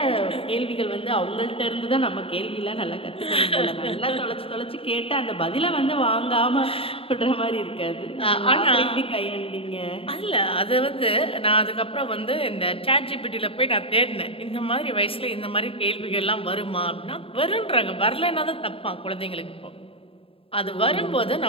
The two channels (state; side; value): late; right; 0.27 ms